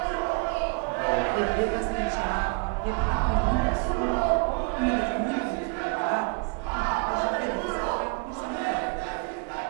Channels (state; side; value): quieter; left; 34.1 dB